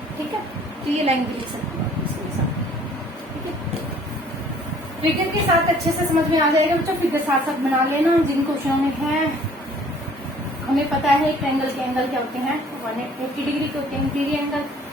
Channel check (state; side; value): normal; both; correlation 0.55